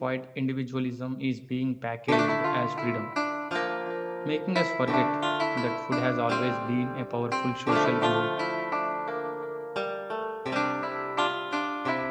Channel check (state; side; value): identical; both; correlation 1.00